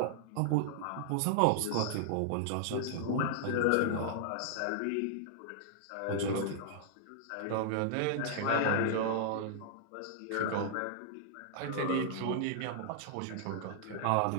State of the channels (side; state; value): both; different; correlation -0.01